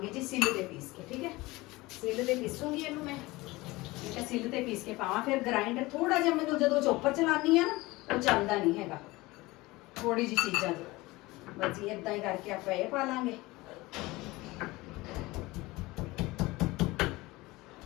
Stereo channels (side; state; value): right; quieter; 21.0 dB